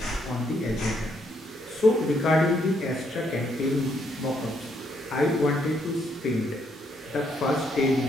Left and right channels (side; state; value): both; normal; correlation 0.73